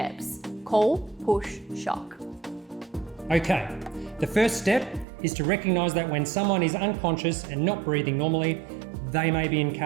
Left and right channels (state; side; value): drops out; left; at 5.1 s